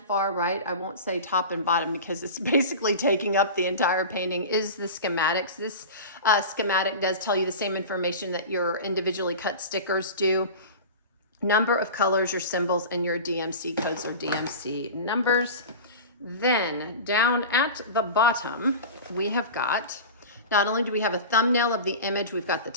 far right, I won't say top and bottom because it's basically taking up the entire painting, is the schematics. This schematic does tell you the same information that your individually cut stickers do. Number of colors, your symbols, and your DMC codes or DMC numbers. Then down at the bottom, we have got, not only do we have a thumbnail of the image, we've got the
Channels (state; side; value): inverted; both; correlation -0.31